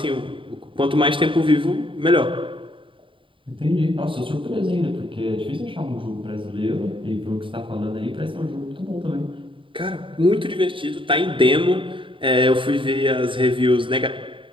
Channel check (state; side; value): late; left; 0.25 ms